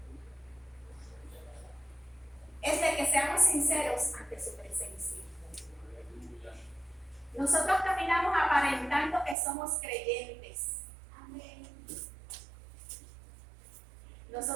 es de que seamos sinceros ante su presencia. Nosotros caminamos aparentando que somos creyentes. Amén.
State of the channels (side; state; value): left; drops out; at 9.3 s